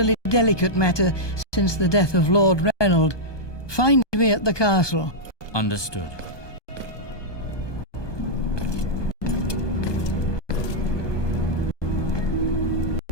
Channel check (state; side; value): late; right; 1.2 ms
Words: delicate matter since the death of Lord Reynold. Find me at the castle. Understood.